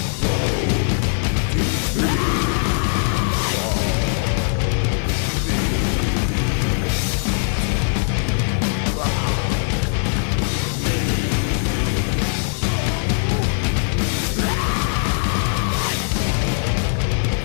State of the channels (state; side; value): silent; right; digital silence